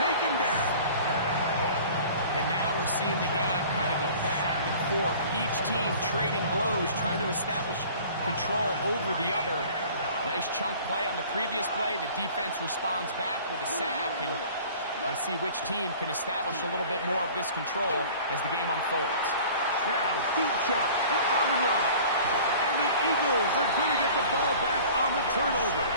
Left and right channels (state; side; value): inverted; both; correlation -0.45